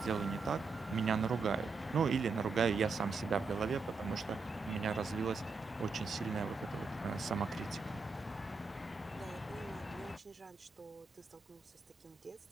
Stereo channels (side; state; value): left; quieter; 4.3 dB